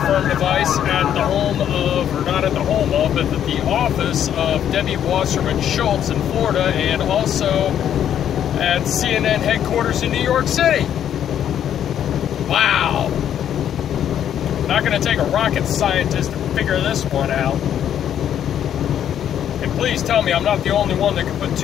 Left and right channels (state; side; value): quieter; right; 9.9 dB